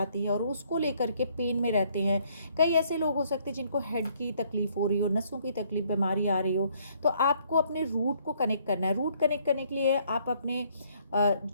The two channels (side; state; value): both; inverted; correlation -0.66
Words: है और उसको लेकर के पेन में रहते हैं। कई ऐसे लोग हो सकते हैं जिनको हेड की तकलीफ हो रही हो, नसों की तकलीफ, बीमारी आ रही हो। तो आपको अपने रूट को कनेक्ट करना है। रूट कनेक्ट करने के लिए आप अपने